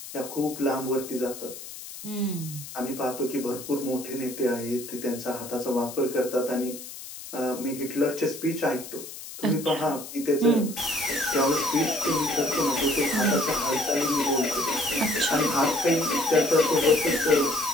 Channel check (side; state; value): left; noise; hiss, 12 dB below the sound